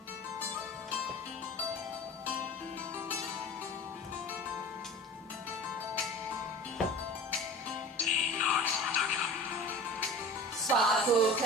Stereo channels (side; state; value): both; normal; correlation 0.36